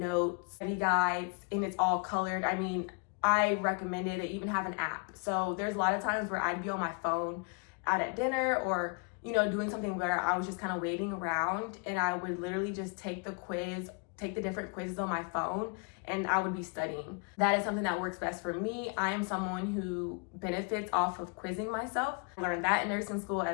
study guides, and it's all colored. I recommend it. They even have an app. So there's a lot of times where I'd be on my phone out at dinner or, doing something where I was just kind of waiting around, and I would literally just take the different quizzes on my phone, and I would be studying. That is something that works best for me. I am someone who benefits off of quizzing myself. I learned that in nursing school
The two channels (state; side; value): quieter; right; 34.9 dB